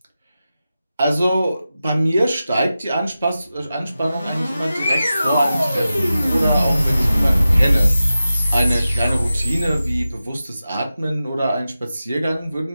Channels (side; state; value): both; inverted; correlation -0.93